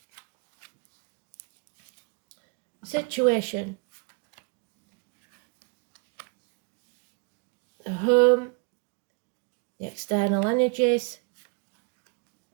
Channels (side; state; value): left; quieter; 33.4 dB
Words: Situation. The home, the external energies,